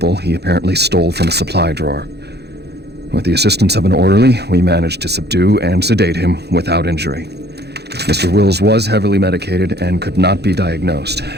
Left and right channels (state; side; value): late; left; 0.48 ms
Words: he apparently stole from a supply drawer. With the assistance of an orderly, we managed to subdue and sedate him without injury. Mr. Wills was heavily medicated and could not be diagnosed,